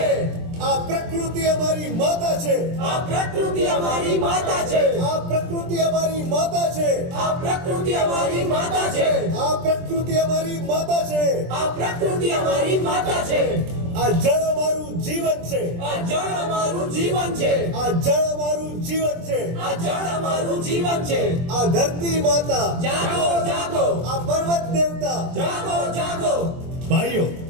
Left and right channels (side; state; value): left; late; 23 ms